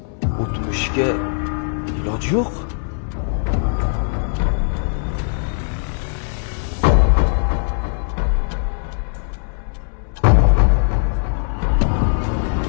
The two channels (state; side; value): silent; right; 66 dB below the other